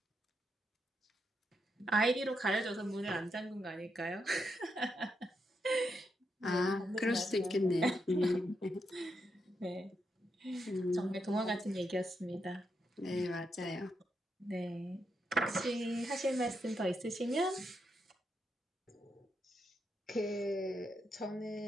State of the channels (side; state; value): both; normal; correlation 0.82